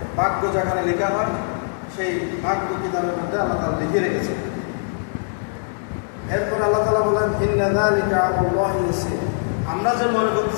ভাগ্য যেখানে লেখা হয় সেই ভাগ্য কিতাবের মধ্যে আল্লাহ তাআলা লিখে রেখেছেন। এরপর আল্লাহ তাআলা বলেন, ইন্না যালিকা আলাল্লাহি ইয়াসির, আমরা যে মনে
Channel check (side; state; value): right; silent; digital silence